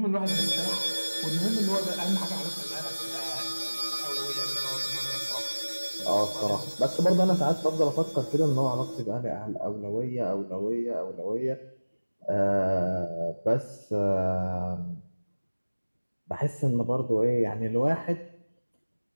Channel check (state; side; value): inverted; both; correlation -1.00